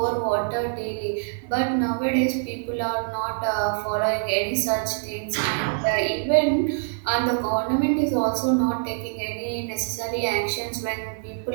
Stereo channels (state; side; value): silent; left; digital silence